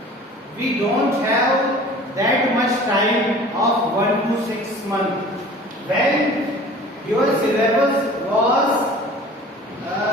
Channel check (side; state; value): both; normal; correlation 0.45